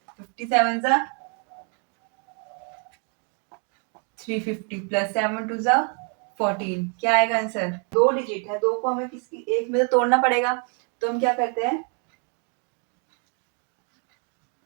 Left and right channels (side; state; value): left; quieter; 39.1 dB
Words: 57 सा 350 प्लस 7 टू सा 14, क्या आएगा आंसर। दो डिजिट है, दो को हमें किसी एक में से तोड़ना पड़ेगा, तो हम क्या करते हैं